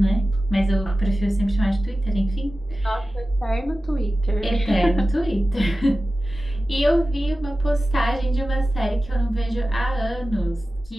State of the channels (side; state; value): both; normal; correlation 0.95